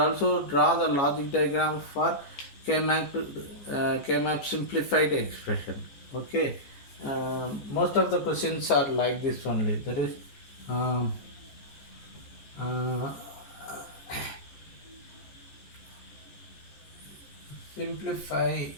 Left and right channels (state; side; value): late; right; 14 ms